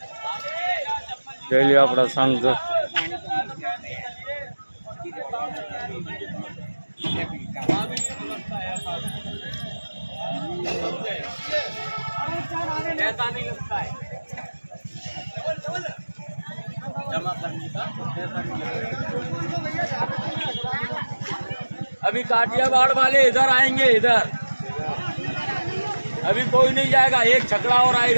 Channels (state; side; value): inverted; both; correlation -1.00